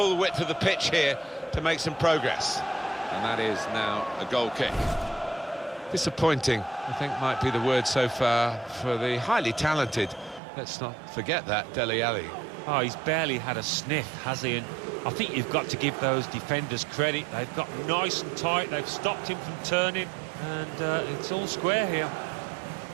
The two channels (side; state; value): left; drops out; at 10.4 s